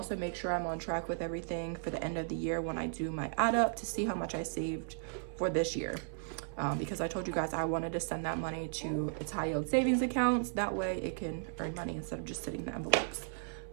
make sure I'm on track with everything for the end of the year when I do my add up to see how much I saved for this year. Because I told you guys I wanted to send that money to its high yield savings accounts. That way it can earn money instead of just sitting in the envelopes.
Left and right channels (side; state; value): left; silent; 54 dB below the other